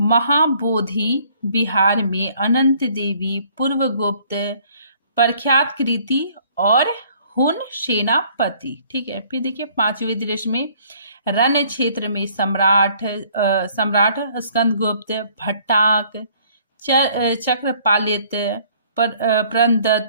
महाबोधि विहार में अनंत देवी, पूर्वगुप्त, प्रख्यात कृति और हुन सेनापति। ठीक है, फिर देखिए पांचवें दृश्य में रण क्षेत्र में सम्राट स्कंदगुप्त, भट्टाक, चक्रपालित,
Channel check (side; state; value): both; inverted; correlation -0.59